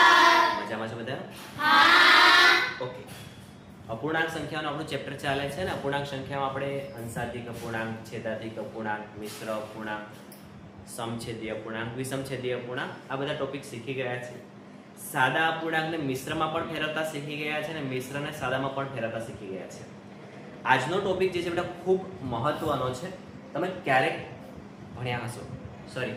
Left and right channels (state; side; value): identical; both; correlation 1.00